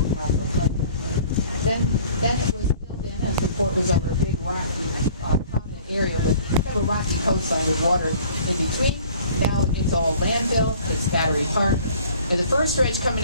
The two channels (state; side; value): inverted; both; correlation -0.51